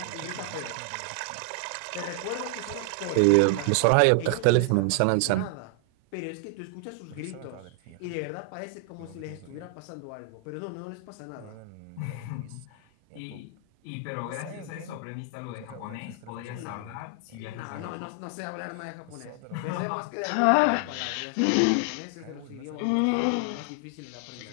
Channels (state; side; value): different; both; correlation 0.00